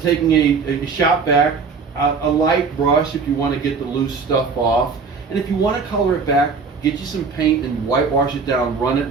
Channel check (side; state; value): left; quieter; 5.0 dB